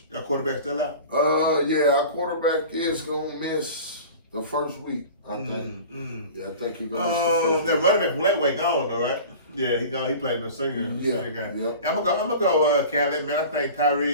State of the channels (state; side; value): inverted; both; correlation -0.38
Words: Your quarterback still out? Our quarterback is gonna miss the first week, I think. Yeah, I think he's gonna miss the first week. That running back from Lakeway gone though, right? Yeah, he gone. He played the senior game. Yep. I'm gonna go Catholic, man. I think